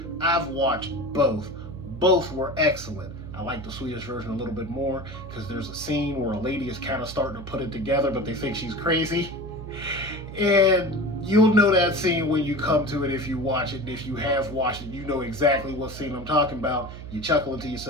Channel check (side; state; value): right; noise; hum, 12 dB below the sound